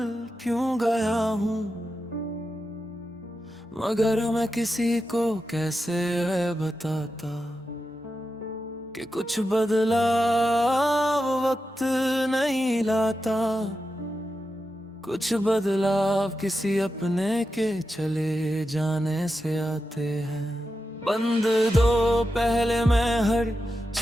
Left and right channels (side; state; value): both; normal; correlation 0.89